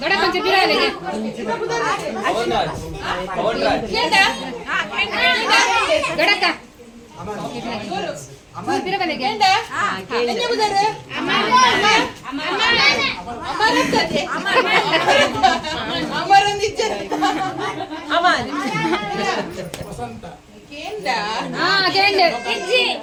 ದೊಡ್ಡ ಕೊಂಚ ಬಿಡಲಿಗೆ ದೊಡ್ಡಕ್ಕ ಬಿಡಬಲಿಗೆ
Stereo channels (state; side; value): identical; both; correlation 1.00